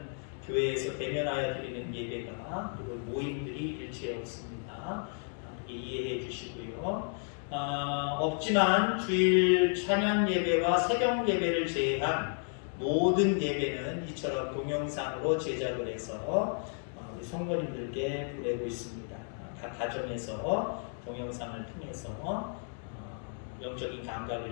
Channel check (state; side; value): silent; right; 56 dB below the other